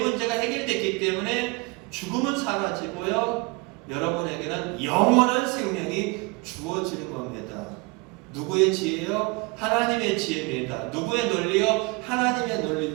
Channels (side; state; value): left; quieter; 26.7 dB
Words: 해결됐기 때문에 죽음은 사라지고요. 여러분에게는 영원한 생명이 주어지는 겁니다. 누구의 지혜요? 하나님의 지혜입니다. 누구의 논리요? 하나님의